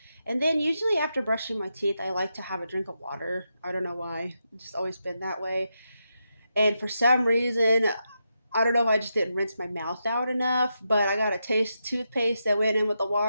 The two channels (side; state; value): both; inverted; correlation -0.85